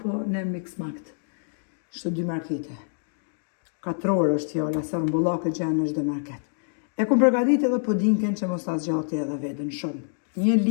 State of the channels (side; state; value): right; silent; digital silence